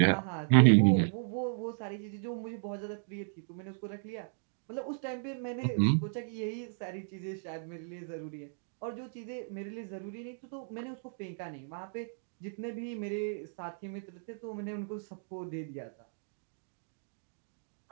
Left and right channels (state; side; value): silent; left; digital silence